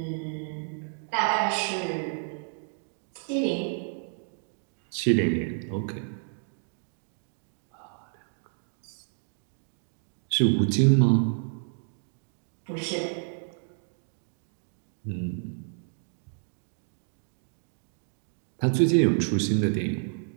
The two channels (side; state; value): left; silent; 58 dB below the other